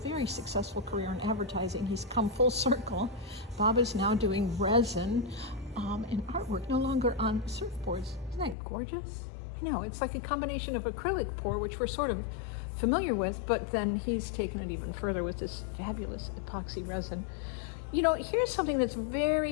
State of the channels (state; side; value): drops out; right; at 8.6 s